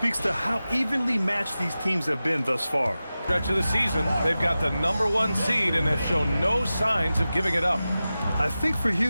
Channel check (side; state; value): both; inverted; correlation -0.95